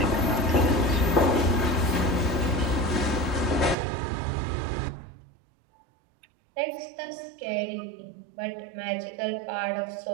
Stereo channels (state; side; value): drops out; left; at 3.8 s